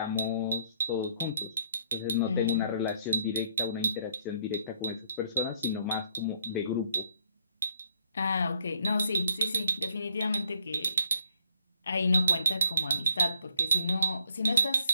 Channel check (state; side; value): inverted; both; correlation -0.68